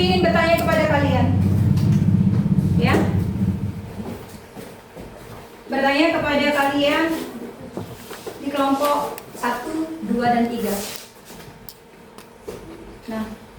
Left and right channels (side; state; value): both; identical; correlation 1.00